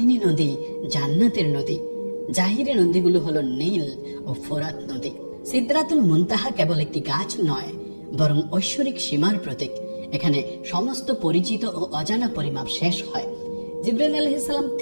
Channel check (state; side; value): inverted; both; correlation -1.00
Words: নদী জান্নাতের নদী। জাহিরি নদীগুলো হলো নীল ও ফোরাত নদী। সিদরাতুল মুনতাহা কেবল একটি গাছ নয়, বরং ঐশ্বরিক সীমার প্রতীক। এখানে সমস্ত পরিচিত ও অজানা পরিমাপ শেষ হয়। জিবরাইল আলাইহিস সালাম